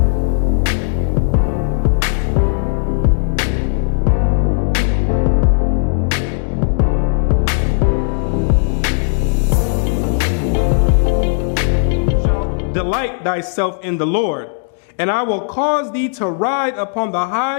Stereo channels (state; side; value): silent; right; digital silence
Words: Delight thyself in the Lord, and I will cause thee to ride upon the